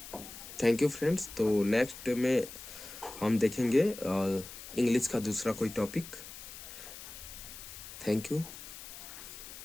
Thank you friends. तो नेक्स्ट में हम देखेंगे इंग्लिश का दूसरा कोई टॉपिक। Thank you.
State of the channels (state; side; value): noise; left; hiss, 13 dB below the sound